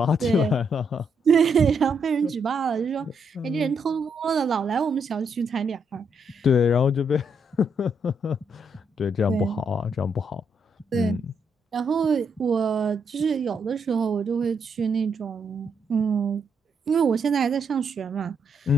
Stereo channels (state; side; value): normal; both; correlation 0.77